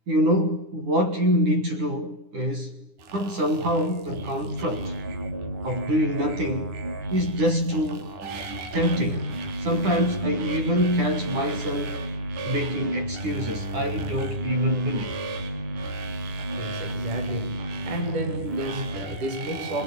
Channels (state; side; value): late; left; 9.9 ms